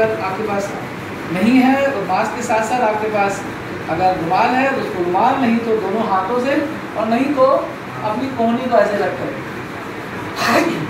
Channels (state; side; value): identical; both; correlation 1.00